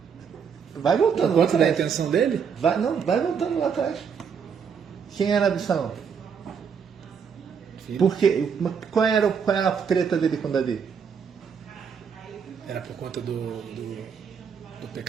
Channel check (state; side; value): quieter; left; 6.7 dB